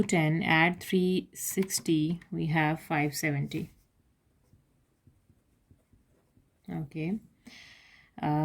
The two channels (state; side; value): identical; both; correlation 1.00